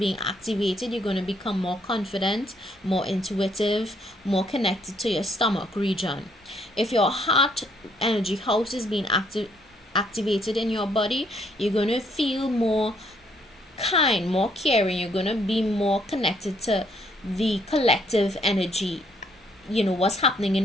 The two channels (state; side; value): normal; both; correlation 0.69